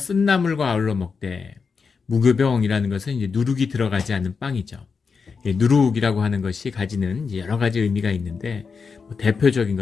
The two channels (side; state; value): right; quieter; 5.3 dB